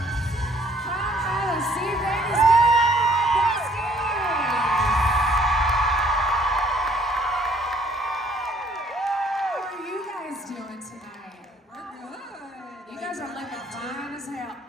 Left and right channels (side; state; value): both; normal; correlation 0.61